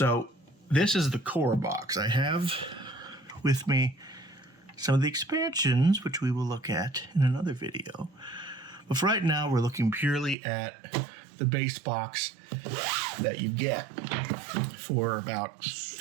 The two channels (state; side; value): drops out; left; at 10.4 s